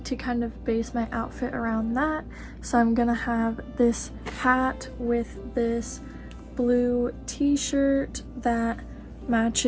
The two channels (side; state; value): both; identical; correlation 1.00